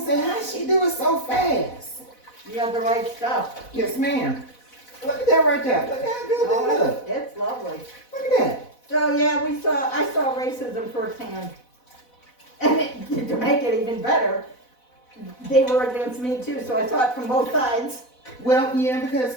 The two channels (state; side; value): late; right; 4.1 ms